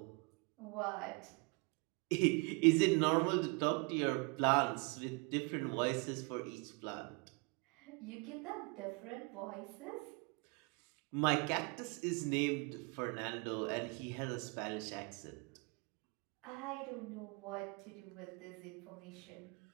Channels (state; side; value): quieter; left; 31.2 dB